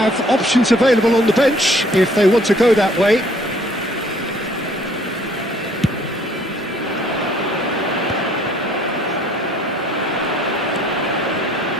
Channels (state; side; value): normal; both; correlation 0.59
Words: options available on the bench if they want to go that way.